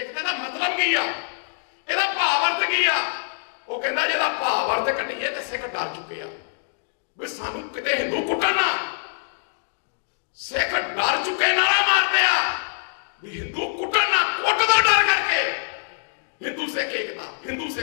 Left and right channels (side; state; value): right; silent; digital silence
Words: ਦਾ ਮਤਲਬ ਕੀ ਆ, ਇਹਦਾ ਭਾਵ ਅਰਥ ਕੀ ਆ? ਉਹ ਕਹਿੰਦਾ ਜਿਹਦਾ ਭਾਵ ਅਰਥ ਕੱਢੀਏ ਤੇ ਸਿੱਖ ਡਰ ਚੁੱਕੇ ਆ ਵੀ ਸਾਨੂੰ ਕਿਤੇ ਹਿੰਦੂ ਕੁੱਟਣ ਨਾ। ਸਿੱਖ ਡਰ ਚੁੱਕੇ ਨਾਰਾ ਮਾਰਦੇ ਆ ਵੀ ਹਿੰਦੂ ਕੁੱਟਣ ਨਾ, ਕੁੱਟ ਦਾ ਡਰ ਕਰਕੇ ਹਿੰਦੂ ਸਿੱਖ ਏਕਤਾ, ਹਿੰਦੂ